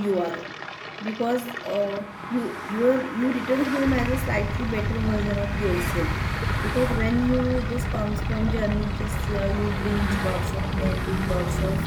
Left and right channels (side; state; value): both; identical; correlation 1.00